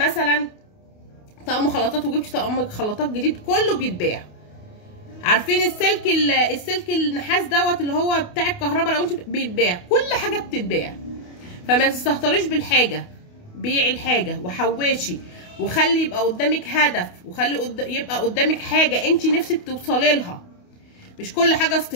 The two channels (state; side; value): late; right; 28 ms